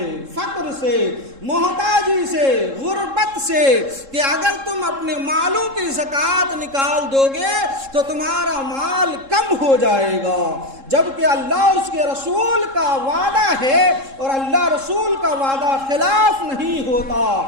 فقر سے، محتاجی سے، غربت سے، کہ اگر تم اپنے مالوں کی زکوٰۃ نکال دو گے تو تمہارا مال کم ہو جائے گا، جبکہ اللہ اور اس کے رسول کا وعدہ ہے اور اللہ رسول کا وعدہ خلاف نہیں ہوتا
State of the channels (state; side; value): late; left; 3.7 ms